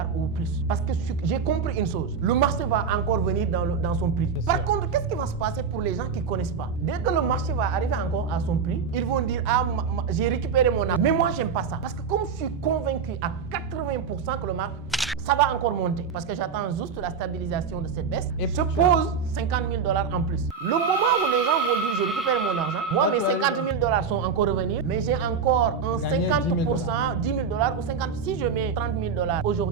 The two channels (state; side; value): quieter; left; 6.0 dB